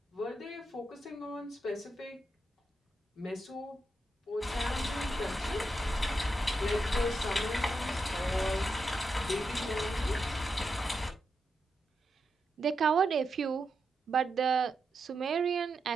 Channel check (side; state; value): both; normal; correlation 0.86